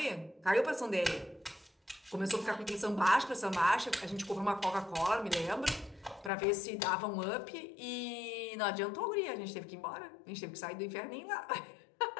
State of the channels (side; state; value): right; drops out; at 6.3 s